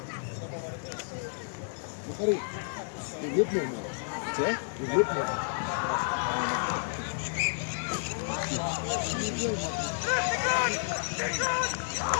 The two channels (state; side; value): silent; right; digital silence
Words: Jy loop nou maar. Sê? Jy loop nou.